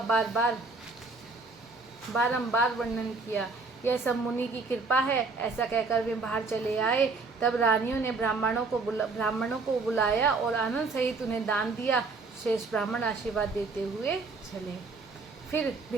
बारंबार वर्णन किया। यह सब मुनि की कृपा है, ऐसा कहकर वे बाहर चले आए। तब रानियों ने ब्राह्मणों को बुलाया और आनंद सहित उन्हें दान दिया। शेष ब्राह्मण आशीर्वाद देते हुए चले। फिर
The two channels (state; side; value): quieter; left; 3.9 dB